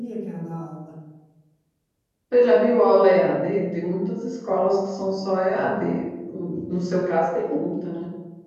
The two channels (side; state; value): both; identical; correlation 1.00